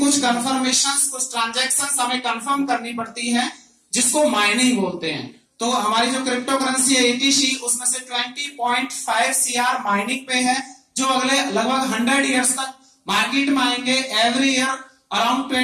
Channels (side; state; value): both; identical; correlation 1.00